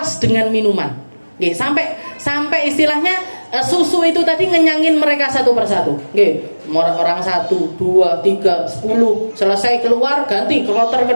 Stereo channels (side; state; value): both; inverted; correlation -1.00